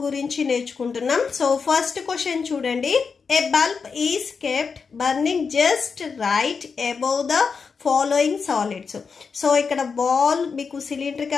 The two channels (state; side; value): quieter; right; 5.4 dB